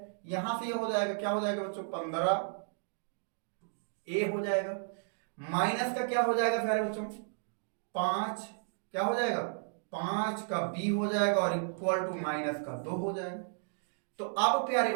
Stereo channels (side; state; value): left; silent; digital silence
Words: यहां से ये हो जाएगा, क्या हो जाएगा बच्चों, 15a हो जाएगा। माइनस का क्या हो जाएगा प्यारे बच्चों, 5, क्या हो जाएगा, 5 का b हो जाएगा और इक्वल टू माइनस का 2 हो जाएगा। तो अब प्यारे